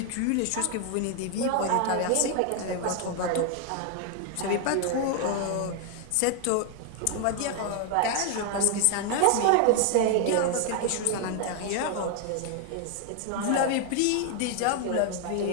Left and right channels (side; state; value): both; different; correlation 0.00